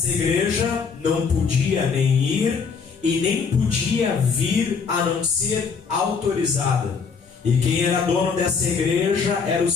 igreja não podia nem ir e nem podia vir a não ser autorizada. E quem era dono dessa igreja eram os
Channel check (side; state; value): right; quieter; 5.6 dB